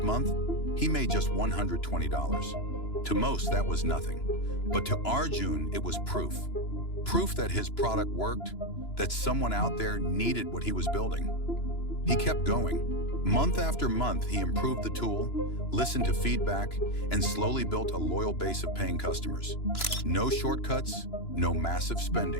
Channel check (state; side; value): late; right; 2.9 ms